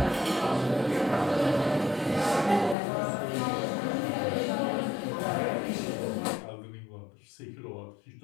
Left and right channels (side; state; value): right; drops out; at 2.8 s